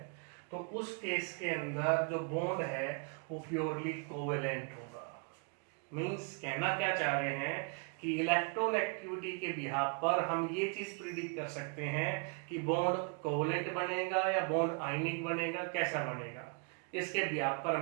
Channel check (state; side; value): quieter; left; 36.1 dB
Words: तो उस केस के अंदर जो बॉन्ड है वो प्योरली कोवेलेंट होगा। मींस कहना क्या चाह रहे हैं कि इलेक्ट्रोनेगेटिविटी के बिहाफ पर हम ये चीज प्रिडिक्ट कर सकते हैं कि बॉन्ड कोवेलेंट बनेगा या बॉन्ड आयनिक बनेगा, कैसा बनेगा। इसके बेस पर